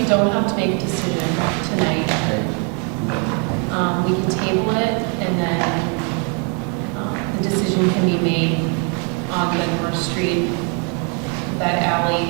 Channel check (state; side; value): quieter; left; 37.7 dB